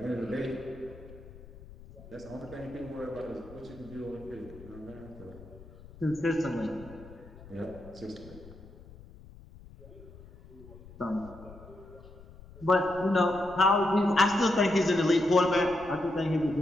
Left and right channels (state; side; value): noise; left; rumble, 19 dB below the sound